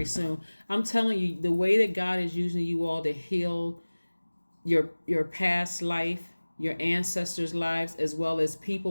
soon. I'm telling you, the way that God is using you all to heal your past life, your ancestors' lives, as well as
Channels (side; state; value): both; inverted; correlation -1.00